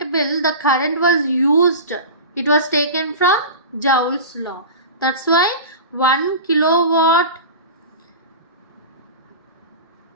bill, the current was used, it was taken from Joule's law. That's why 1 kilowatt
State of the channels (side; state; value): both; inverted; correlation -0.31